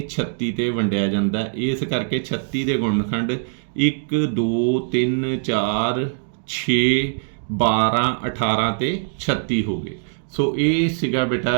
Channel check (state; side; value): silent; left; digital silence